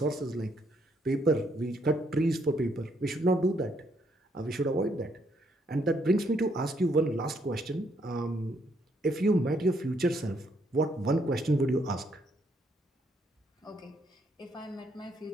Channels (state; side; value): normal; both; correlation 0.72